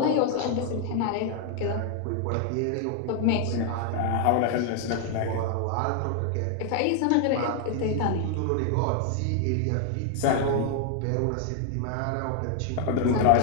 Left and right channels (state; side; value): different; both; correlation 0.00